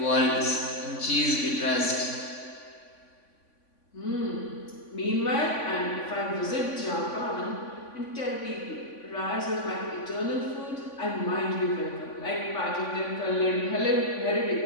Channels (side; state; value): right; late; 3.5 ms